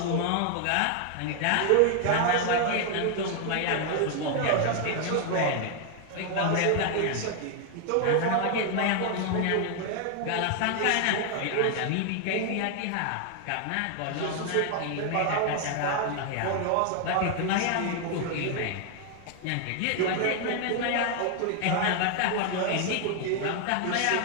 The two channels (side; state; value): both; different; correlation 0.00